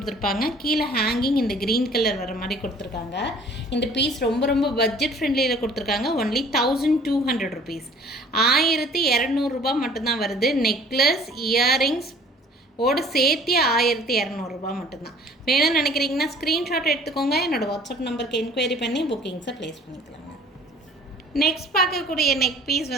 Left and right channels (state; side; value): normal; both; correlation 0.51